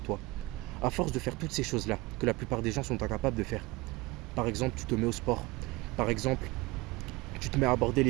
À force de faire toutes ces choses-là que la plupart des gens sont incapables de faire, par exemple, tu te mets au sport, par exemple, tu te mets à aborder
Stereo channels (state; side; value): quieter; left; 21.9 dB